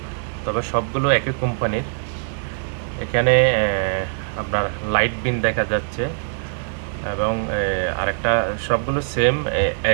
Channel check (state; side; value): silent; left; digital silence